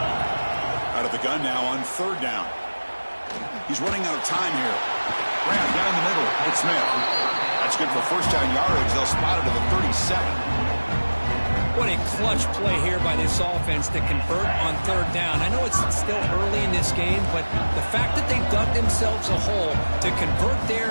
Out of the gun now on third down. He's running out of time here. Graham down the middle. It's Smith. That's good for first down yardage. They'll spot it to the 37. What a clutch play here by this offense to convert on third down. I know it's still early in this game, but the fact that they dug themselves a hole to convert there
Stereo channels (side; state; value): both; inverted; correlation -1.00